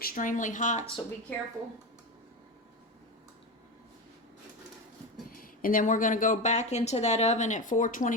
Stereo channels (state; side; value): normal; both; correlation 0.20